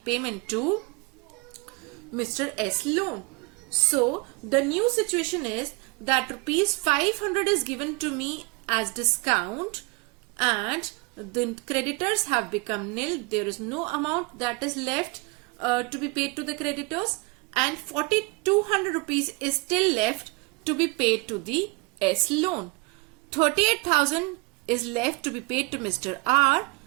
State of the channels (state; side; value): quieter; left; 28.5 dB